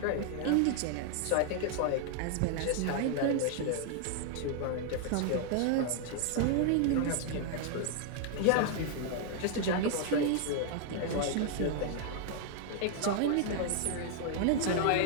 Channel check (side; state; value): both; different; correlation 0.00